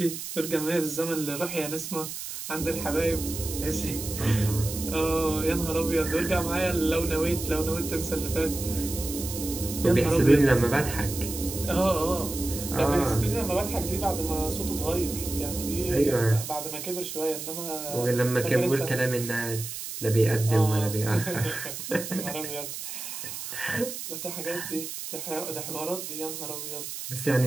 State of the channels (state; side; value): noise; right; hiss, 8 dB below the sound